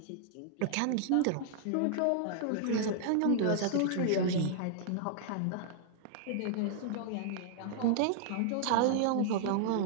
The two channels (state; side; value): different; both; correlation -0.01